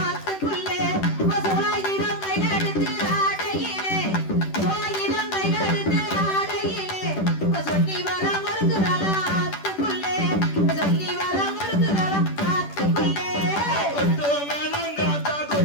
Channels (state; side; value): late; right; 10 ms